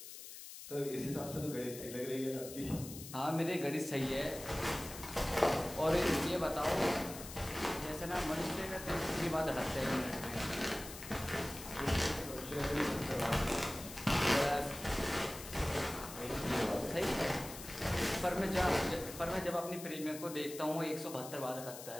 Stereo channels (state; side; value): noise; left; hiss, 12 dB below the sound